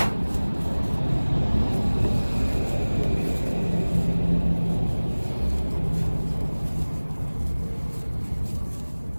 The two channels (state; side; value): inverted; both; correlation -1.00